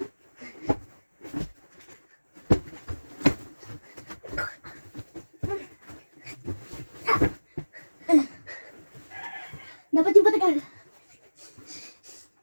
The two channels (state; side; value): inverted; both; correlation -1.00